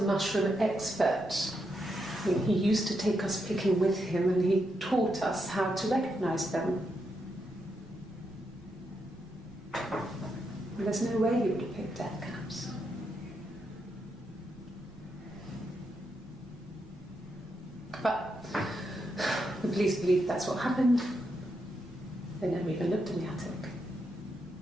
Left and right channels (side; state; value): right; noise; rumble, 23 dB below the sound